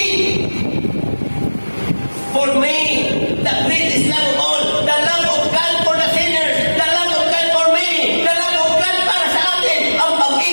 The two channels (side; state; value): both; inverted; correlation -1.00